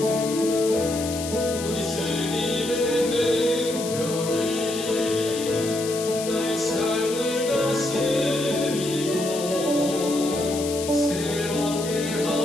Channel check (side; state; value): left; noise; hiss, 9 dB below the sound